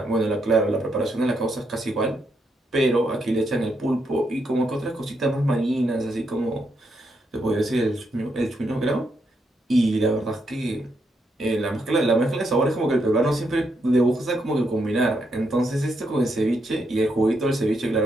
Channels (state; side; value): normal; both; correlation 0.79